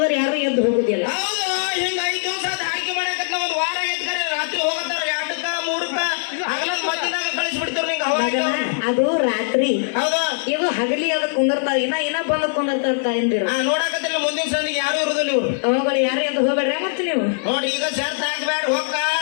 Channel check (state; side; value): silent; right; 65 dB below the other